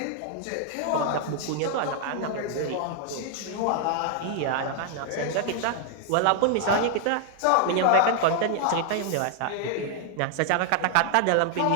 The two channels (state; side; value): different; both; correlation 0.00